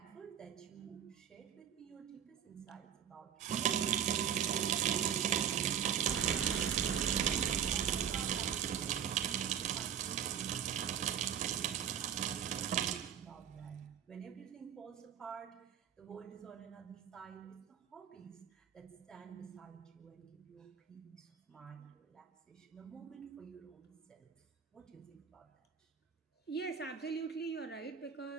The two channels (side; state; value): left; quieter; 8.8 dB